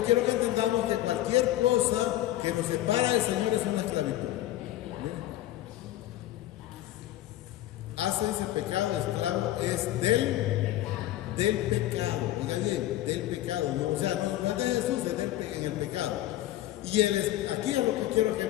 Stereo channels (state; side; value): quieter; right; 14.4 dB